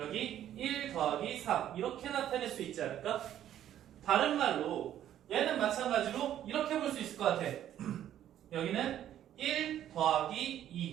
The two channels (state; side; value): quieter; left; 11.3 dB